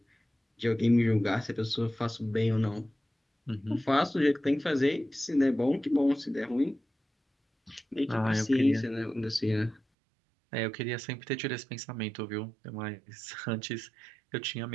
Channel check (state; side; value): drops out; left; at 9.8 s